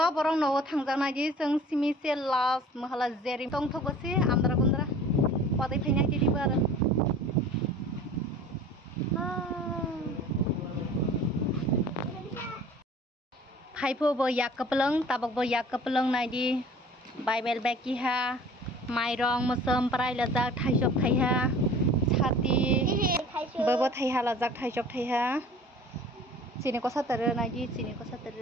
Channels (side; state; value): both; normal; correlation 0.46